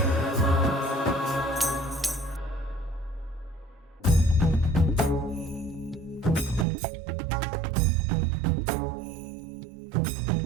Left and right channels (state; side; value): drops out; left; at 6.7 s